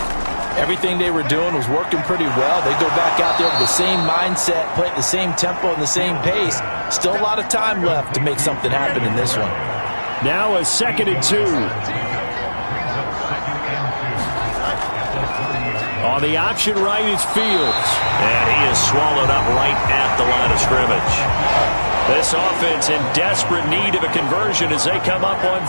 Everything they were doing was working pretty well. They go back out there with the same mindset, play at the same tempo and the same pace. Still a lot of time left to make something happen in this one. Now a 2nd and 2. On the option right is Fields. And he is swallowed up right at the line of scrimmage. This offense in desperate need of a conversion as they come up on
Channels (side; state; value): both; inverted; correlation -1.00